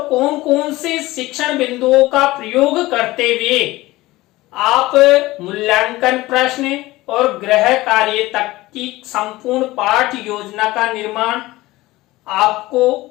कौन कौन से शिक्षण बिंदुओं का प्रयोग करते हुए आप मूल्यांकन प्रश्न और गृह कार्य तक की संपूर्ण पाठ योजना का निर्माण आपको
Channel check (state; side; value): quieter; right; 18.8 dB